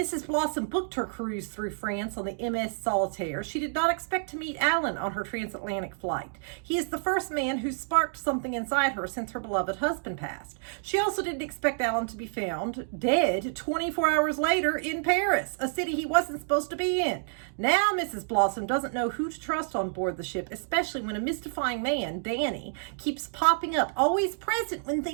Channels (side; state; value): left; silent; digital silence